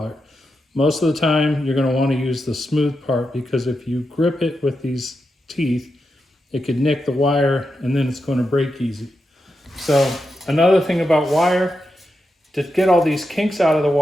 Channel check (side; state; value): both; normal; correlation 0.87